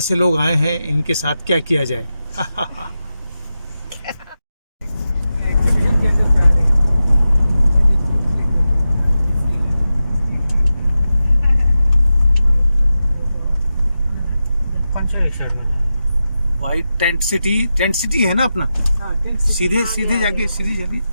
से लोग आए हैं इनके साथ क्या किया जाए। वाइट टेंट सिटी है ना अपना। सीधे जाके सीधी चलिए।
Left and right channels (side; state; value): both; inverted; correlation -0.91